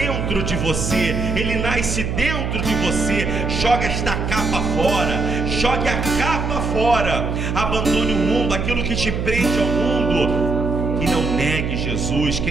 de você. Ele nasce dentro de você. Joga esta capa fora. Jogue a capa fora. Abandone o mundo, aquilo que te prende ao mundo. E não negue Jesus.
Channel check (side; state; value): right; noise; hum, 2 dB below the sound